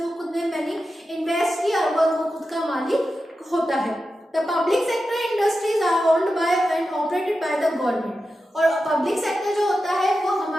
खुद ने मनी इन्वेस्ट किया और वो खुद का मालिक होता है। The public sector industries are owned by and operated by the government. और पब्लिक सेक्टर जो होता है वो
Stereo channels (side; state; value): both; normal; correlation 0.91